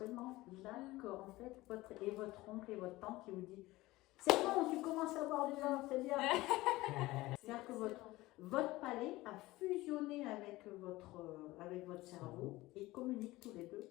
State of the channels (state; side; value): quieter; right; 18.9 dB